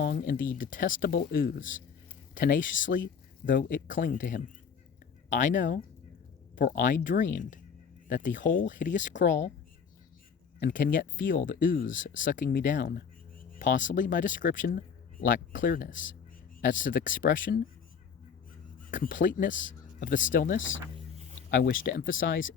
in the detestable ooze, tenaciously though it cling to him. I know, for I dreamed that the whole hideous crawl, and can yet feel the ooze sucking me down. Possibly my description lacked clearness. As to the expression, completeness of the stillness, I wish to emphasize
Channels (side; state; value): right; quieter; 6.5 dB